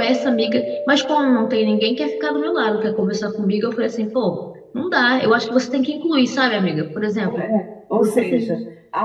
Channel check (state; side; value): identical; both; correlation 1.00